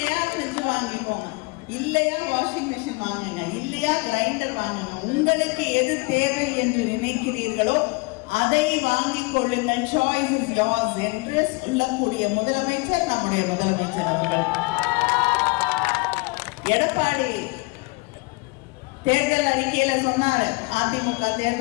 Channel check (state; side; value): quieter; right; 27.3 dB